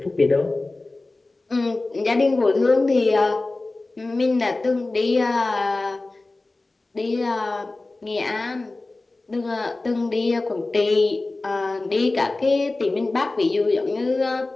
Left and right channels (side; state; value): right; quieter; 3.2 dB